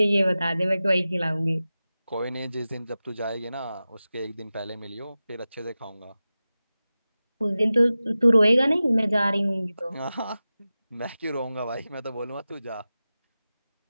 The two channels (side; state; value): both; inverted; correlation -0.95